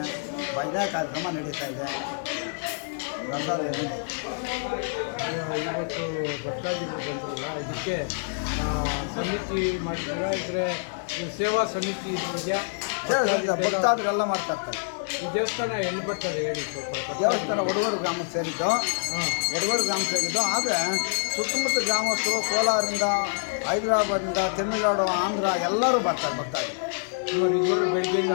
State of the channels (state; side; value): silent; right; 58 dB below the other